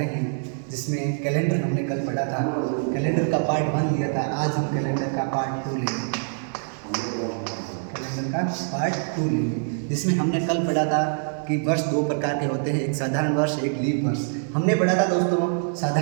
हैं, जिसमें कैलेंडर हमने कल पढ़ा था। कैलेंडर का पार्ट 1 लिया था। आज हम कैलेंडर का पार्ट 2 लेंगे। कैलेंडर का पार्ट 2 लेंगे, जिसमें हमने कल पढ़ा था कि वर्ष दो प्रकार के होते हैं, एक साधारण वर्ष, एक लीप वर्ष। हमने पढ़ा था दोस्तों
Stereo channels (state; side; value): silent; left; 62 dB below the other